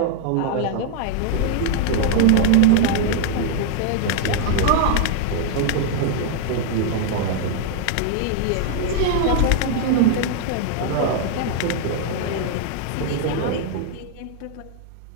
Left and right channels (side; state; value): both; different; correlation 0.00